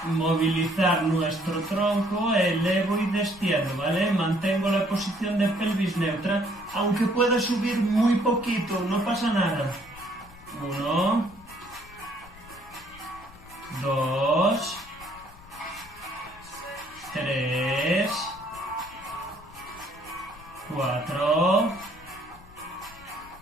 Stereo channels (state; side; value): noise; left; rumble, 22 dB below the sound